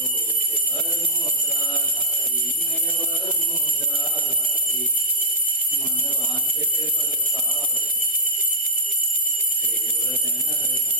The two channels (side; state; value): both; normal; correlation 0.00